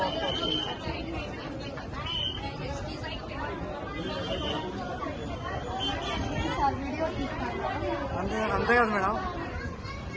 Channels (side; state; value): both; identical; correlation 1.00